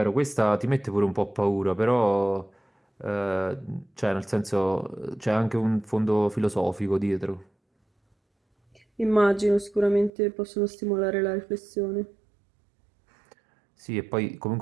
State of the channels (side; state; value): left; drops out; at 10.1 s